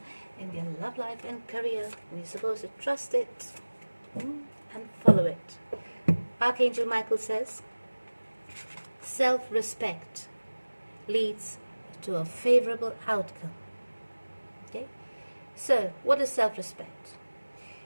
in their love life and career, and you're supposed to trust it and follow it. Archangel Michael says, self-respect leads to a favorable outcome. Okay, so what is self-respect?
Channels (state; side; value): inverted; both; correlation -1.00